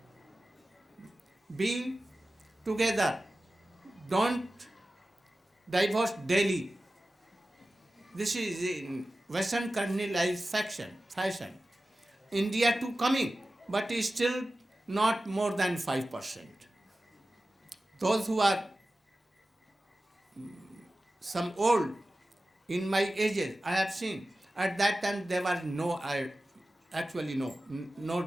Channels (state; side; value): normal; both; correlation 0.95